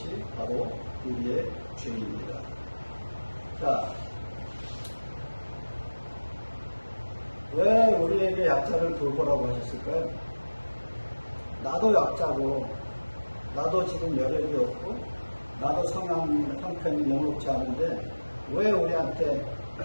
바로 우리의 죄입니다. 자, 왜 우리에게 약자를 돌보라고 하셨을까요? 나도 약자고, 나도 지금 여력이 없고, 나도 성향 형편이 영롭지 않은데 왜 우리한테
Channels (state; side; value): inverted; both; correlation -1.00